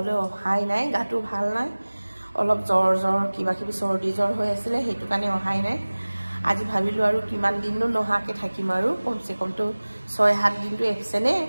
অহাই নাই, গাটো ভাল নাই, অলপ জ্বৰ কিবা কিবি চৰ্দি জ্বৰ হৈ আছিল, সেইটো কাৰণে অহাই নাই। আজি ভাবিলো আৰু কিমান দিননো নহাকে থাকিম আৰু কমসে কমটো 6-7 দিনটো এবসেনে,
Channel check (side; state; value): both; inverted; correlation -1.00